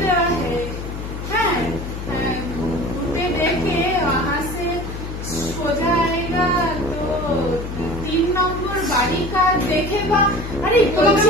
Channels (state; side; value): noise; left; hum, 7 dB below the sound